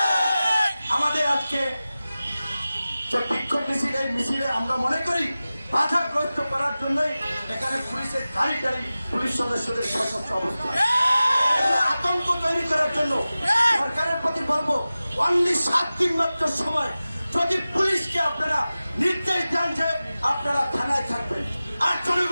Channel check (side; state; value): both; inverted; correlation -0.96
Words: আমাদের আজকে বিক্ষোভ মিছিল, এই মিছিলে আমরা মনে করি বাধাগ্রস্ত করার জন্যই এখানে পুলিশের গাড়ি গাড়ি পুলিশ সদস্যদের সশস্ত্র অবস্থা, আতঙ্ক তৈরি করার জন্য সরকারের প্রতি বলবো, অনলি 7 দিন মাত্র সময়, যদি পুলিশকে আপনারা নির্দেশ দেন যে আপনারা থানায় থাকবেন, আর